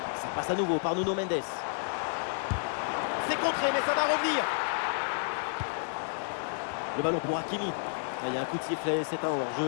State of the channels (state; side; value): silent; right; digital silence